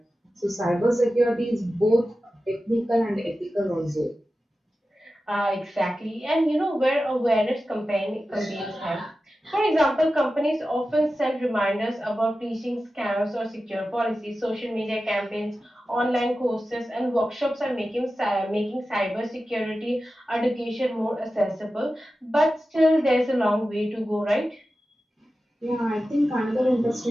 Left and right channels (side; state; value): both; normal; correlation 0.93